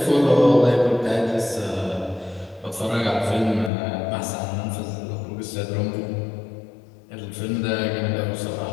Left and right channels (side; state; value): right; drops out; at 3.7 s